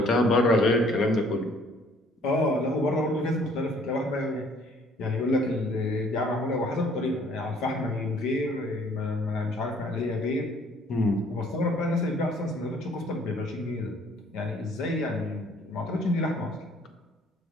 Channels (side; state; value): both; normal; correlation 0.59